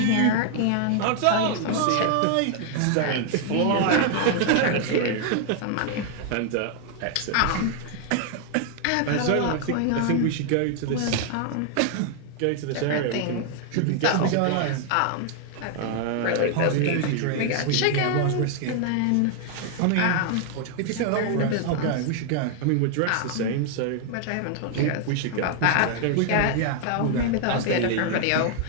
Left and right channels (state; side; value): different; both; correlation 0.00